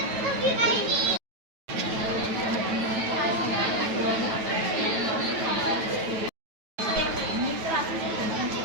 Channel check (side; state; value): left; late; 9.2 ms